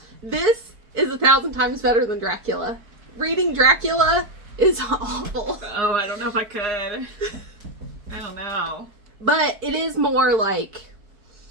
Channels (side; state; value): left; late; 4.6 ms